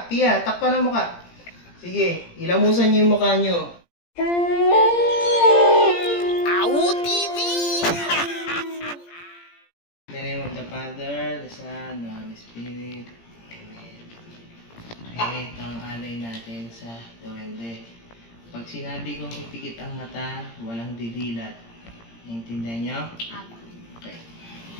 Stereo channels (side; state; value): right; late; 17 ms